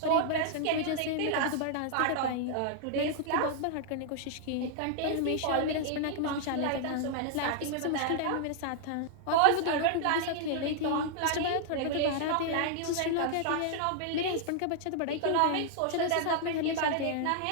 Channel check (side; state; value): both; different; correlation -0.01